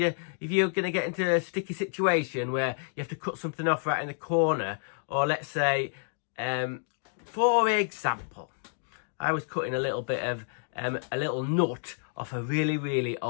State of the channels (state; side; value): silent; right; digital silence